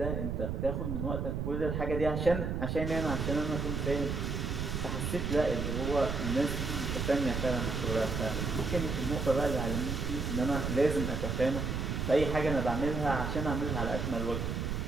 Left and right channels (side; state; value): right; noise; rumble, 1 dB below the sound